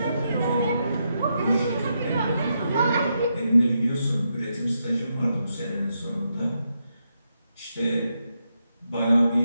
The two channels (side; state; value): both; inverted; correlation -0.83